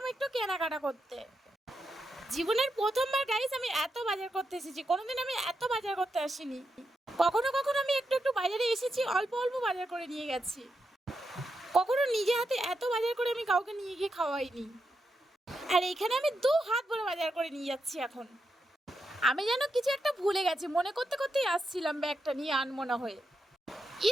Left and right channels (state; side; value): normal; both; correlation 0.85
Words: একটু কেনাকাটা করতে। জীবনের প্রথমবার গাইস আমি এত বাজার করতে এসেছি, কোনোদিন আমি এত বাজার করতে আসিনি। কখনো কখনো আমি একটু একটু বাজারে এসেছি, অল্প অল্প বাজার করে নিয়ে গেছি। কখনো নিজে হাতে এত বাজার করে আমি কাউকে নিয়ে গিয়ে খাওয়াইনি। আর এখানে আমি 2 হাত ভরে বাজার করে নিয়ে যাচ্ছি এখন। আমি যেন কিছু একটা ভুলে গেছি, মনে করতে করতেই আসছিলাম ব্যাগটা নিয়ে আনমনা হয়ে।